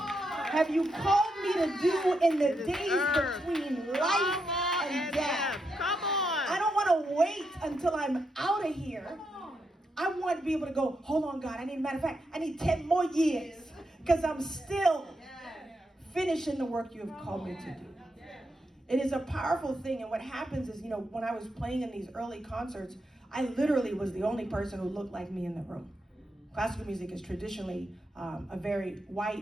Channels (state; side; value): normal; both; correlation 0.83